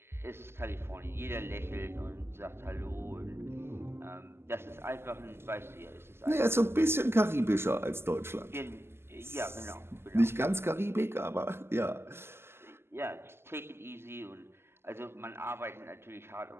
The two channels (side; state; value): left; late; 0.12 ms